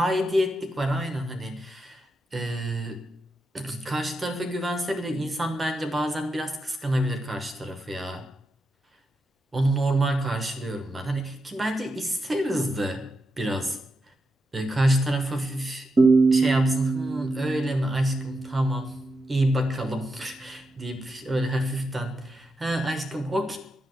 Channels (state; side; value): normal; both; correlation 0.86